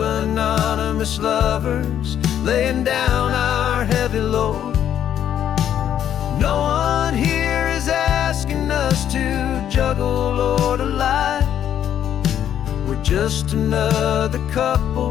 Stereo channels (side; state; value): right; quieter; 10.1 dB